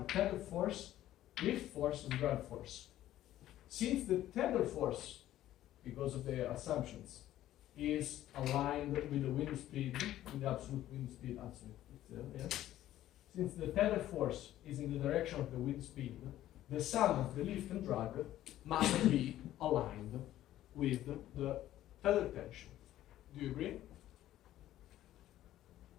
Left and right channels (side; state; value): right; quieter; 13.4 dB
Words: tether force, lift force, and drag force. Since the tether force, because of the assumptions, is aligned with the wind speed, with the absolute wind speed, yes. Since the tether force is in the direction of the wind speed, the sum of the lift and drag must be aligned with the tether tension. Do you agree?